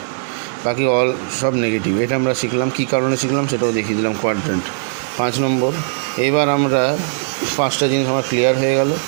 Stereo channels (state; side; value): silent; left; 65 dB below the other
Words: বাকি অল সব নেগেটিভ। এটা আমরা শিখলাম। কী কারণে শিখলাম সেটাও দেখিয়ে দিলাম। কোয়াড্রেন্ট 5 নম্বর। এবার আমরা 5টা জিনিস আমার ক্লিয়ার হয়ে গেল।